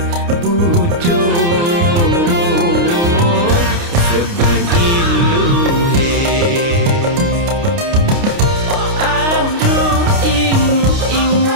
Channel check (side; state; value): left; late; 29 ms